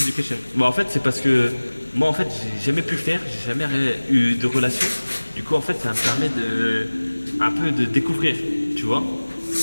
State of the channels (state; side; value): inverted; both; correlation -1.00